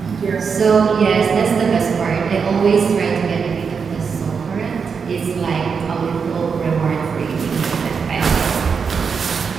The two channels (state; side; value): quieter; left; 5.9 dB